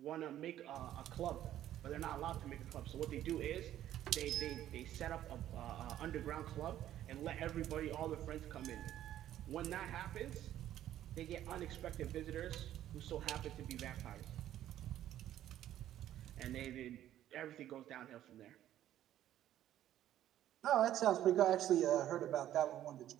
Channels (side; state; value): left; quieter; 12.2 dB